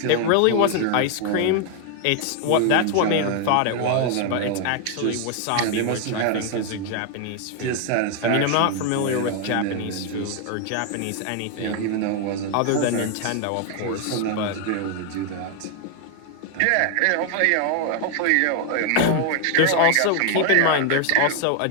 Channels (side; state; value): both; different; correlation 0.00